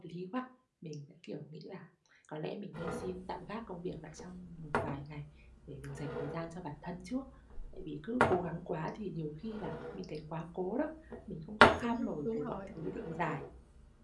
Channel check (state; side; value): identical; both; correlation 1.00